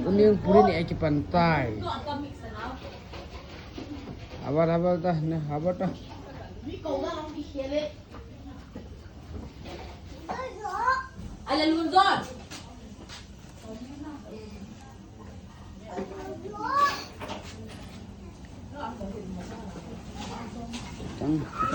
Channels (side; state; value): both; identical; correlation 1.00